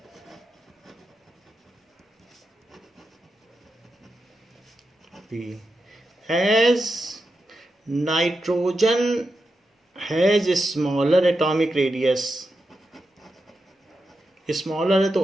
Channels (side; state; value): both; normal; correlation 0.88